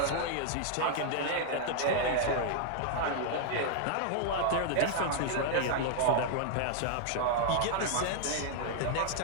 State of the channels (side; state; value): both; different; correlation 0.00